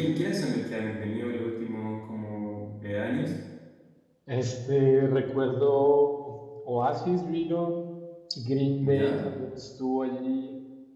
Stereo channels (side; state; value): both; identical; correlation 1.00